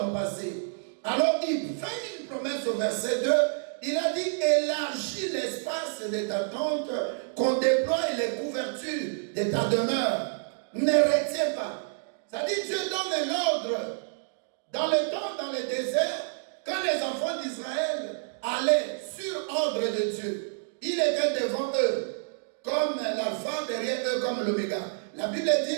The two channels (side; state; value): left; silent; digital silence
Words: passé. Alors il fait une promesse au verset 2, il a dit élargis l'espace de ta tente, qu'on déploie les couvertures de ta demeure. Ne retiens pas. Ça dit Dieu donne un ordre. Dans le temps, dans le désert, quand les enfants d'Israël allaient sur ordre de Dieu, il était devant eux, comme l'alpha, derrière eux comme l'oméga. La Bible